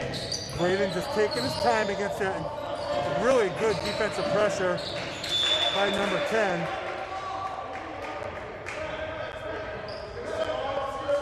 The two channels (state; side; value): identical; both; correlation 1.00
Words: Braden just taking his time against that really good defensive pressure by number 10.